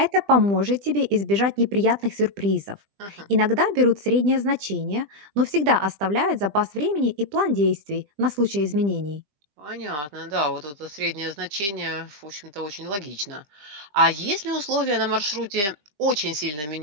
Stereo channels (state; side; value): late; left; 20 ms